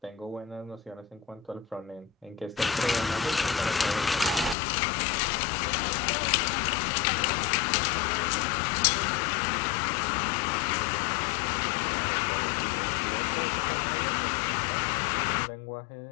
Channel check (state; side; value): drops out; right; at 4.5 s